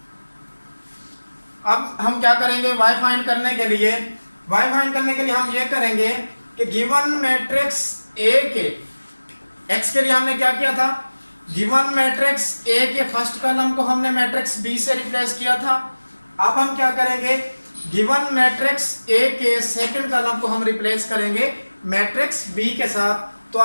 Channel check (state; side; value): inverted; both; correlation -1.00